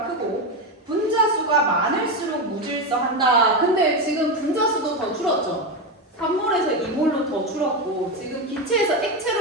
크고 분자수가 많을수록 무질서한다. 근데 지금 분자수도 더 줄었죠? 3몰에서 2몰로 더 줄었고 지금 기체에서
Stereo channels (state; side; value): normal; both; correlation 0.13